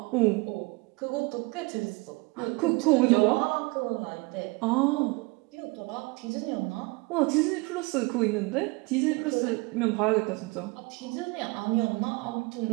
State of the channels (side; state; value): left; quieter; 26.5 dB